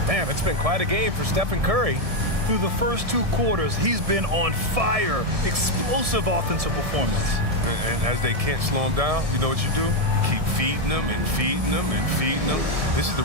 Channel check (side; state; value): left; late; 1.7 ms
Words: Man, it's been quite a game for Stephen Curry. Through the first 2 quarters, he's been on fire. Explosive offensive performance. And as they can't slow him down, you know what you do? You keep feeding them and feeding them and feeding them. This is the